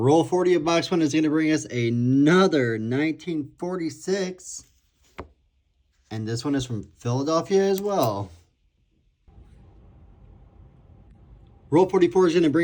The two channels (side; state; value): both; identical; correlation 1.00